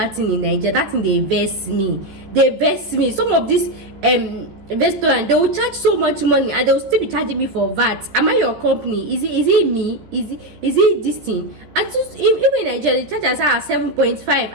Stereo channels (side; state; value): left; late; 14 ms